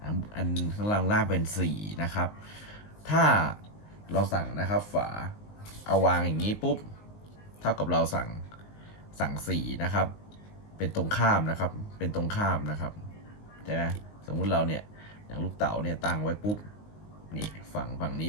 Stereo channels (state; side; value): late; right; 19 ms